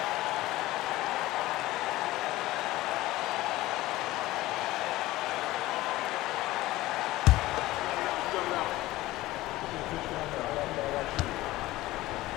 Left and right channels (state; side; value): quieter; right; 16.9 dB